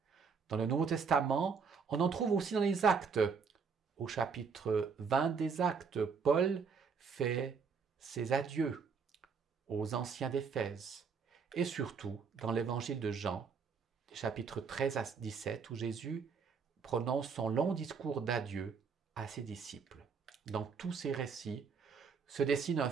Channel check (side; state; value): left; quieter; 5.6 dB